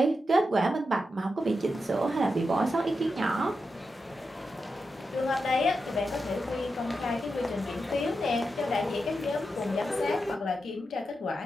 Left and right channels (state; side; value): normal; both; correlation 0.88